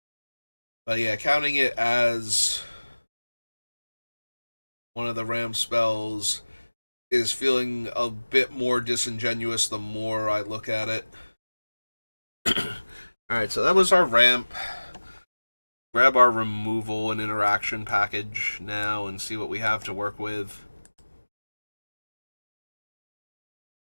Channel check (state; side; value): inverted; both; correlation -1.00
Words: But yeah, counting it as one of the ram spells is feeling a bit more disingenuous the more I look at it. Alright, so that was our ramp. Grab our removal and interaction package now and see what we have to work with.